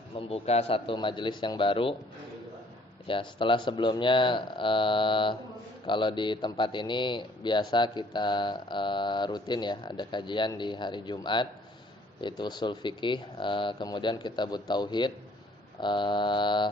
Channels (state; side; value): normal; both; correlation 0.60